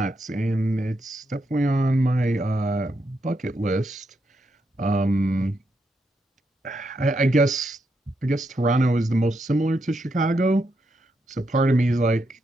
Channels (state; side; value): normal; both; correlation 0.81